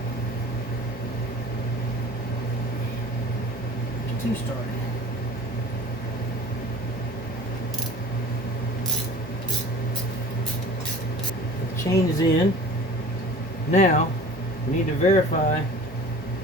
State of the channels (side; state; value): both; normal; correlation 0.42